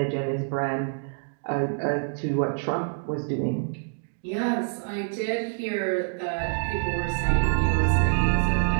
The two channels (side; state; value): left; silent; digital silence